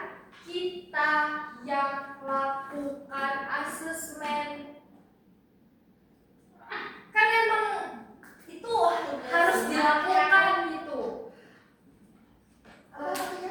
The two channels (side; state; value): both; identical; correlation 1.00